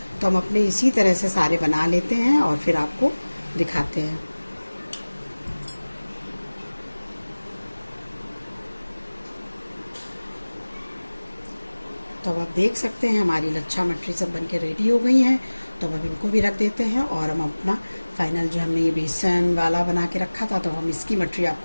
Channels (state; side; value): inverted; both; correlation -1.00